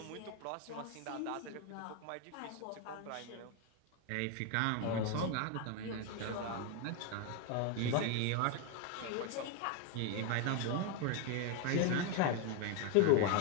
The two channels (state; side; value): different; both; correlation 0.01